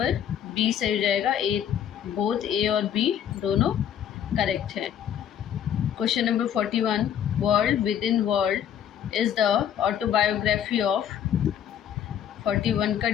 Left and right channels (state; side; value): quieter; right; 9.4 dB